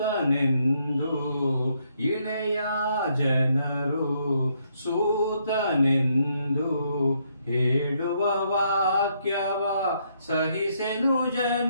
ಇಳೆಯ ಜನರು ಸೂತನೆಂದು ಹೇಳುವ ವಾಕ್ಯವ ಸಹಿಸೆನು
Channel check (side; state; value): both; inverted; correlation -0.74